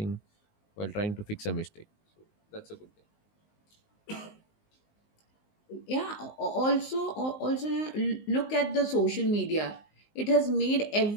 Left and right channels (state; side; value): late; right; 19 ms